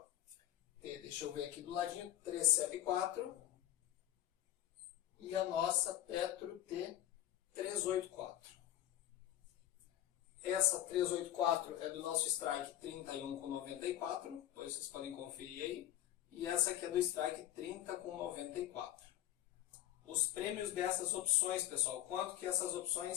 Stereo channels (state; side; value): quieter; right; 12.9 dB